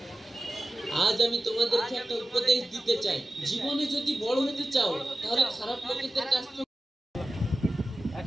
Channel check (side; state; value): both; normal; correlation 0.94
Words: আজ আমি তোমাদেরকে একটা উপদেশ দিতে চাই, জীবনে যদি বড় হতে চাও তাহলে খারাপ লোকেদের কাছ থেকে